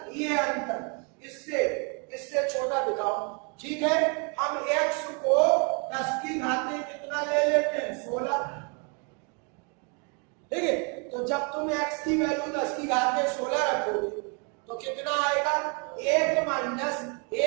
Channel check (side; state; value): left; quieter; 35.9 dB